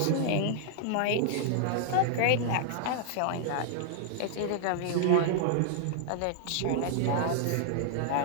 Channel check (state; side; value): different; both; correlation -0.01